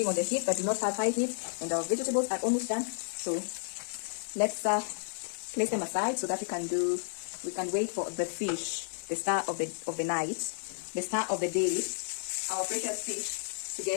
on the heat, but do not have high heat. And our vegetables are almost done. So let's place them aside so that we can wait for the fish, the star of the night, the star of the day, our precious fish, to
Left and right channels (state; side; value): silent; right; digital silence